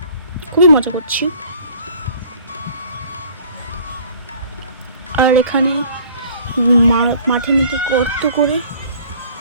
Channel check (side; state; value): both; inverted; correlation -0.53